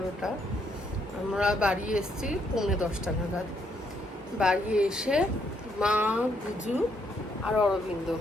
আমরা বাড়ি এসেছি 9:45 নাগাদ। বাড়ি এসে মা, বুজু আর অরবিন্দ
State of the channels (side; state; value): both; normal; correlation 0.73